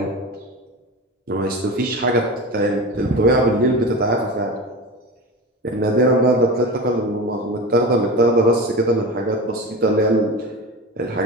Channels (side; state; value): both; normal; correlation 0.28